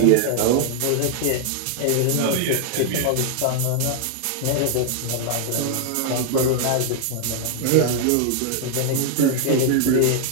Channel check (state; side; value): different; both; correlation 0.00